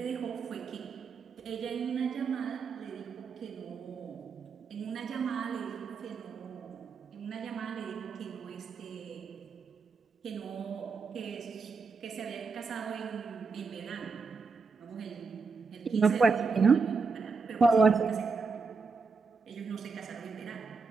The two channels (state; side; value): quieter; left; 4.7 dB